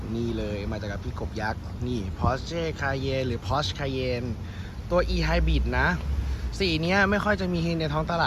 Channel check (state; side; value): identical; both; correlation 1.00